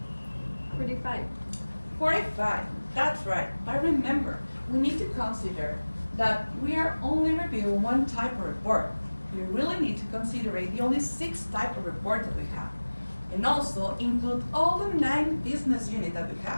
45. 45, that's right. I remember, we need to consider that we are only reviewing one type of report. We really need to consider the only 6 types of report that we have. And also include all the 9 business units that we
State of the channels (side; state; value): both; inverted; correlation -1.00